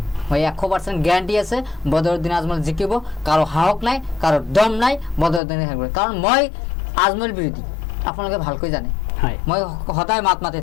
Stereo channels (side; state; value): right; drops out; at 5.4 s